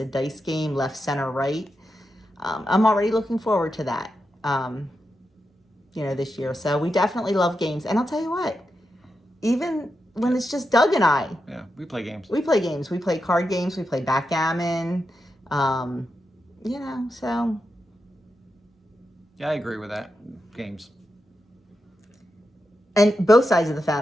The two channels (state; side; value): normal; both; correlation 0.87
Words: dice game, left, center, right. I'm already looking forward to that, this year. So we definitely love games. And I'll tell you what, even when it's just Doug and I. Yeah, we play games. We play games. We play card games. We play backgammon. So. Yeah, I agree with that. Games. And both sides of the